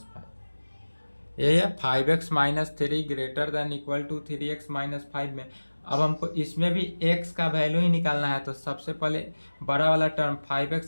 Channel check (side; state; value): both; inverted; correlation -1.00